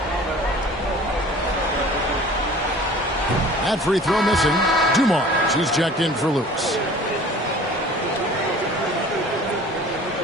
That free throw missing. Dumars, he's checked in for Lewis.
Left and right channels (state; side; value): normal; both; correlation 0.46